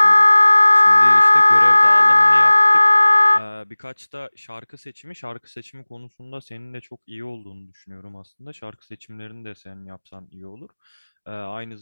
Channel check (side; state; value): both; inverted; correlation -1.00